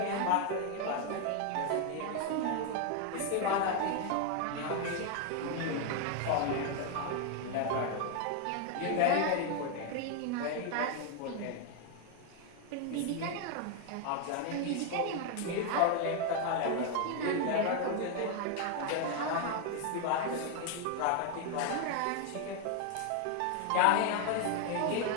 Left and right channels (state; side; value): different; both; correlation 0.01